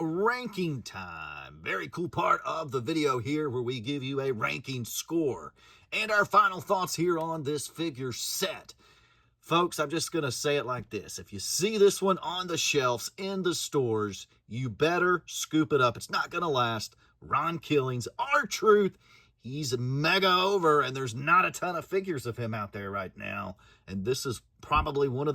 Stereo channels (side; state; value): both; identical; correlation 1.00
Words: time. Very cool part of the video here where we give you a ranking score and our final thoughts here on this figure set. Folks, I'm just going to say it like this. If you see this one on the shelves in the stores, you better scoop it up. It's not going to last. Ron Killings, R-Truth, he's mega over, and there's not a ton of figures of him out there right now. And this is probably one of